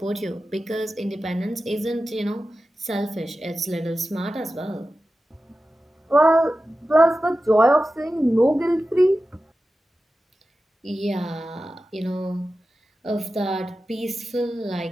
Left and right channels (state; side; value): normal; both; correlation 0.93